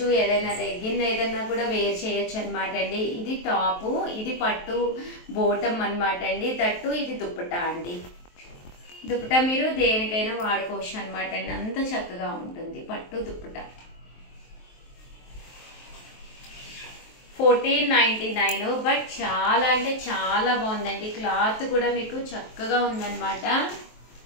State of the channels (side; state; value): right; late; 23 ms